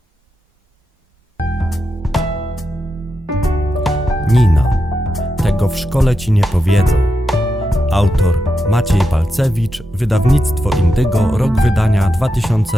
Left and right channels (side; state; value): both; normal; correlation 0.87